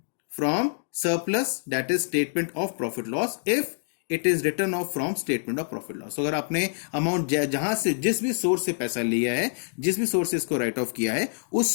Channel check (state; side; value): silent; right; digital silence